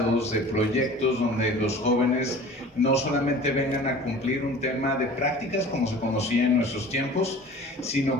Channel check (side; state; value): both; normal; correlation 0.43